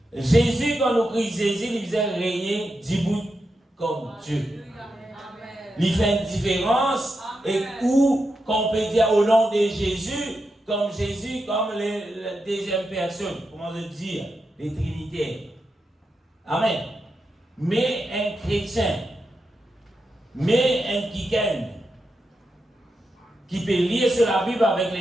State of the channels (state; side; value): normal; both; correlation 0.87